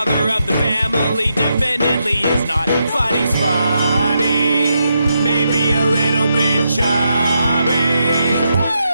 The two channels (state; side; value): inverted; both; correlation -0.82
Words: of the family definitely is not. But he's funny, maybe a little bit chubby.